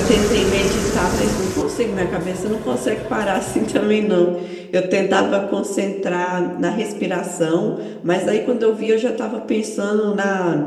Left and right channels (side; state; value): both; identical; correlation 1.00